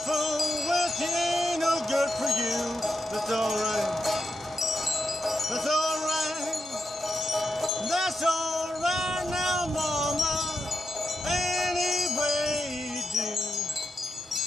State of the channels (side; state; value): both; normal; correlation 0.86